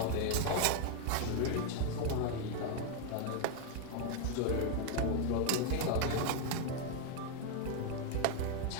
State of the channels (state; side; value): different; both; correlation 0.01